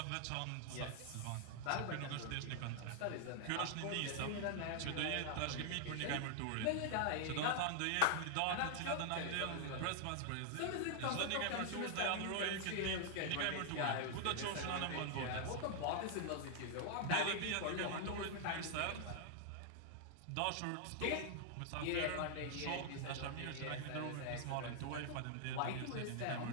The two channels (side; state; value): both; different; correlation -0.01